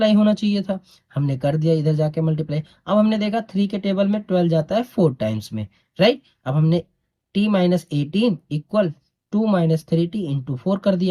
होना चाहिए था, हमने कर दिया इधर जाके मल्टीप्लाई। अब हमने देखा 3 के टेबल में 12 जाता है 4 टाइम्स में, राइट। अब हमने t minus 18 equal 2 minus 3t into 4 कर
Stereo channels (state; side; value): identical; both; correlation 1.00